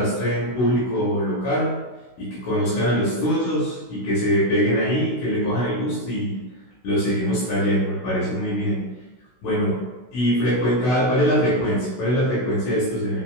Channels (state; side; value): late; right; 16 ms